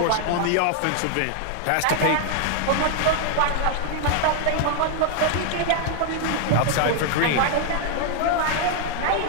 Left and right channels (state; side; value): different; both; correlation 0.00